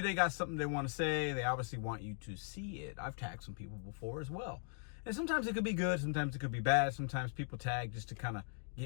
got something they want to say. They obviously want you to see it. I've tagged some people before as well. And sometimes it could be good. Sometimes it could be bad. Sometimes people tag just to kind of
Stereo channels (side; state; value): right; silent; 51 dB below the other